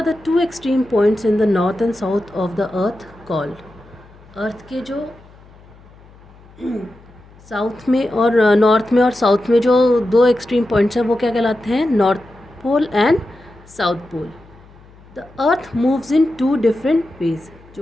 the two extreme points in the north and south of the earth called? अर्थ के जो साउथ में और नॉर्थ में और साउथ में जो दो एक्सट्रीम पॉइंट्स हैं वो क्या कहलाते हैं? North pole and south pole. The earth moves in two different ways.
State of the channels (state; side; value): noise; left; hum, 25 dB below the sound